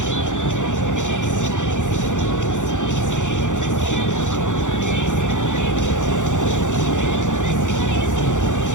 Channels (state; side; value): late; right; 0.86 ms